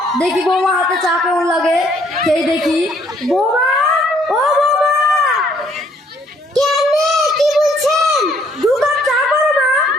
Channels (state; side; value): normal; both; correlation 0.65